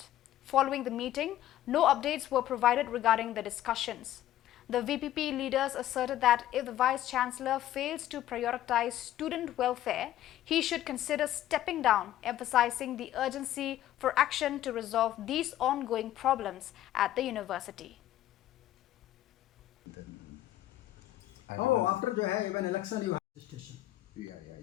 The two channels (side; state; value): right; quieter; 13.2 dB